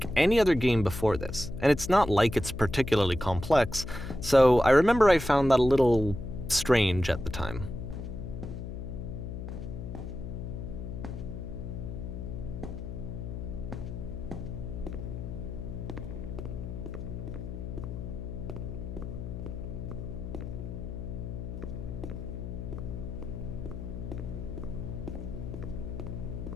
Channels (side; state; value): left; noise; hum, 7 dB below the sound